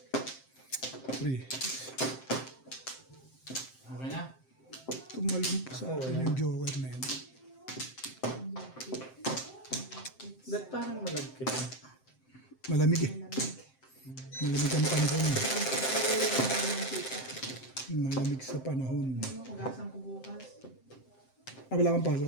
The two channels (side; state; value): right; late; 7.7 ms